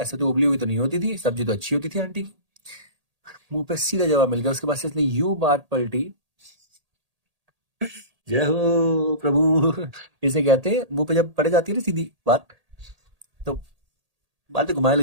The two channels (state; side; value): late; left; 1.8 ms